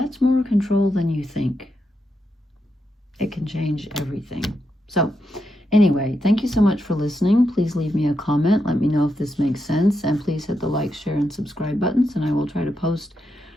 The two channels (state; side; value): normal; both; correlation 0.84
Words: more control than you think. It can change everything. So anyway, thank you so much for listening. Please leave me a comment. Let me know if this makes sense. And please hit the like, share, and subscribe buttons. And I will try to post